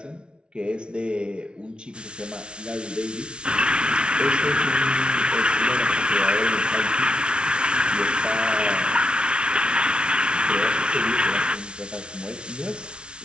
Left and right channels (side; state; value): left; late; 0.057 ms